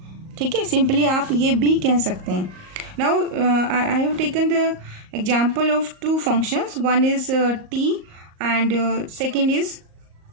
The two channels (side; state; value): left; late; 38 ms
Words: ठीक है, simply आप ये भी कह सकते हैं. Now I have taken the example of two functions. One is t and second is